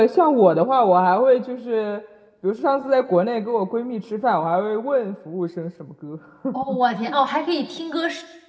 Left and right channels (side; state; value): both; identical; correlation 1.00